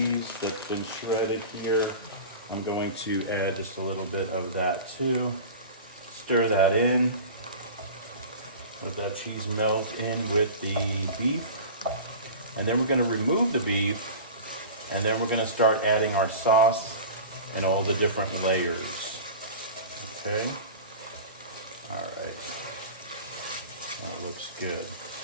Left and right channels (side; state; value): both; inverted; correlation -0.35